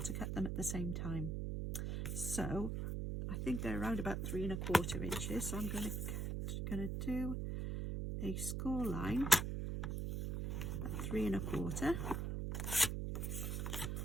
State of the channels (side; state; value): right; noise; hum, 1 dB below the sound